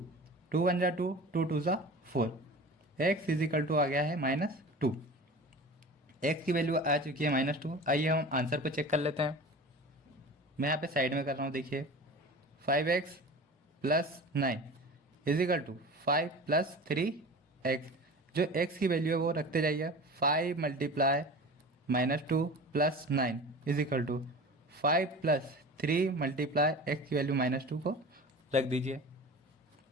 2 1 जा 2, 2 2 जा 4। x इजिकल टू आ गया है -2। x की वैल्यू आ चुकी है -2। आइए हम आंसर को चेक कर लेते हैं। मैं यहाँ पे साइड में कर रहा हूँ। देखिए 5x plus 9 is equal to 5 plus 3x। जो x की वैल्यू है वो रखते जाइए। 5 multiply -2 plus 9 is equal to 5 plus 3 multiply x की वैल्यू -2 को रख दीजिए।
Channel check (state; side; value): normal; both; correlation 0.36